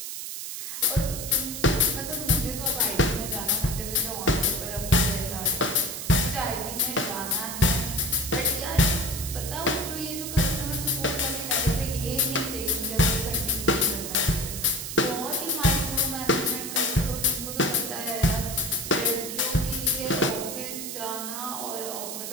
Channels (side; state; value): right; noise; hiss, 6 dB below the sound